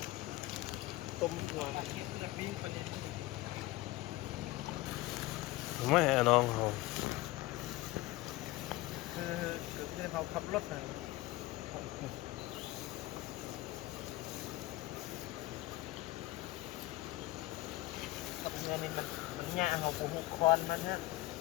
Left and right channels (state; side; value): quieter; right; 18.6 dB